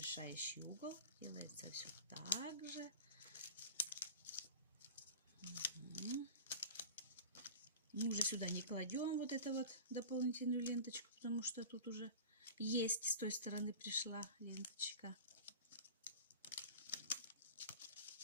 угол. Делается все так же. Угу. Мы уже сюда не кладем вот эту вот дополнительную ленточку, потому что тут уже есть, с той стороны пришла ленточка.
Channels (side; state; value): both; inverted; correlation -0.34